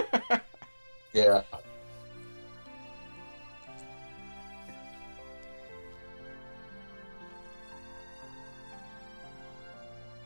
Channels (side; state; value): both; inverted; correlation -1.00